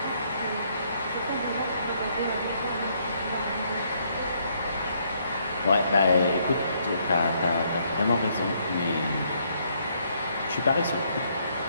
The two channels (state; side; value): inverted; both; correlation -0.71